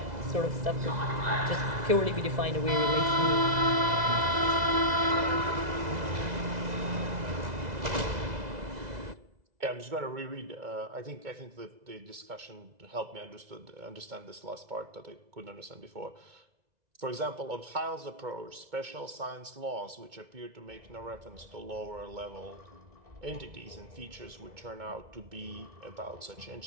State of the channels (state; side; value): late; left; 2.0 ms